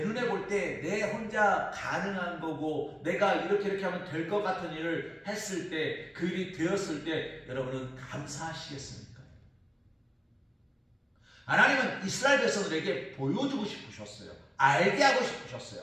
볼 때 내 혼자 가능한 거고 내가 이렇게 하면 될 것 같은 일을 했을 때, 그 일이 되었을 때 여러분은 감사하시겠습니까? 하나님은 이스라엘 백성들에게 보여주고 싶으셨어요. 알게 하고 싶으셨어요.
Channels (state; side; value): identical; both; correlation 1.00